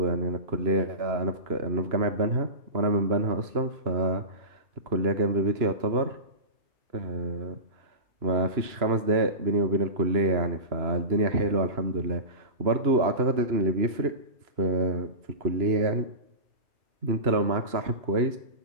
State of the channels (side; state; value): left; late; 2.9 ms